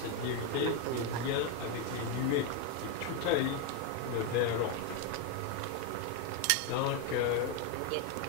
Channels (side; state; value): both; different; correlation 0.01